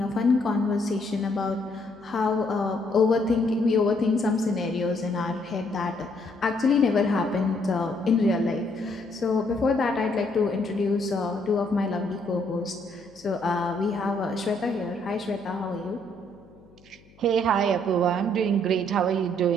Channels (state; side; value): noise; left; hum, 28 dB below the sound